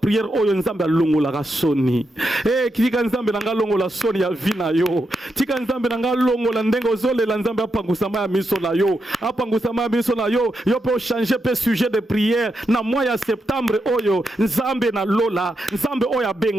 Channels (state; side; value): normal; both; correlation 0.84